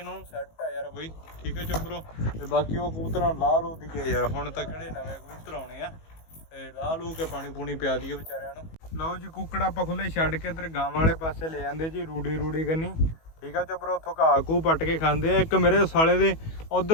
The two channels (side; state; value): right; late; 19 ms